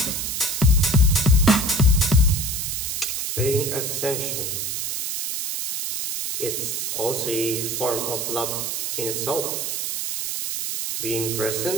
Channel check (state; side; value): noise; right; hiss, 2 dB below the sound